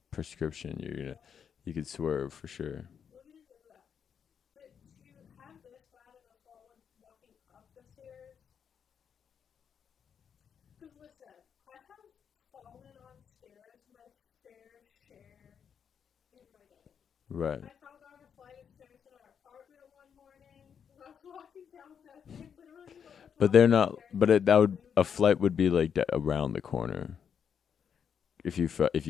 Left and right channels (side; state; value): right; quieter; 7.5 dB